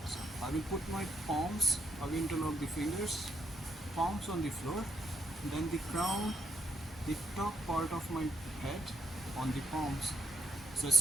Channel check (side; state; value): both; normal; correlation 0.77